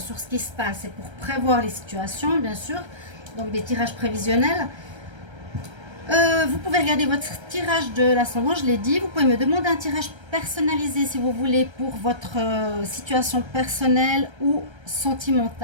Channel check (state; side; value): late; left; 1.3 ms